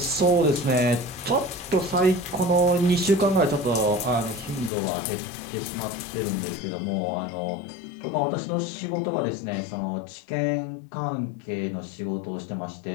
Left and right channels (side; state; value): right; drops out; at 4.7 s